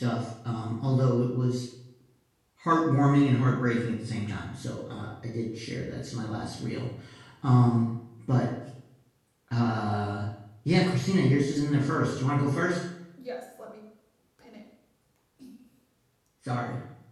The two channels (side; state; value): both; identical; correlation 1.00